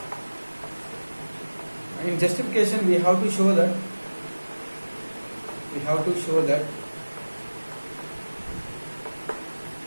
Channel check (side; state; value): both; inverted; correlation -1.00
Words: In justification, we have to show that